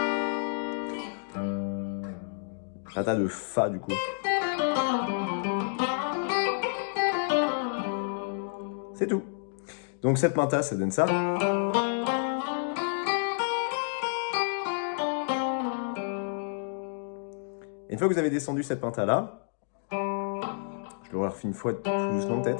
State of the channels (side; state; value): right; silent; digital silence